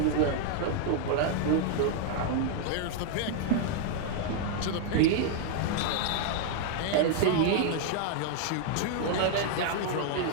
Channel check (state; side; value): different; both; correlation 0.00